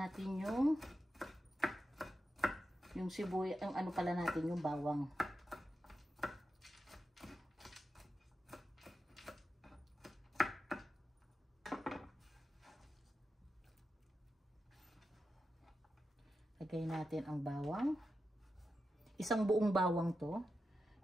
yung sibuyas, yung ano pala natin, yung bawang. Lagay natin ang bawang. Isang buong bawang to.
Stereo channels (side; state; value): both; normal; correlation 0.89